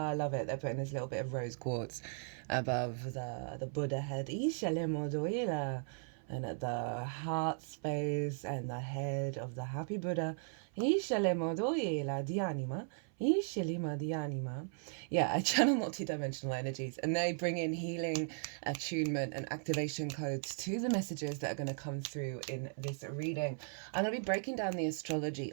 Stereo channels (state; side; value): silent; left; 53 dB below the other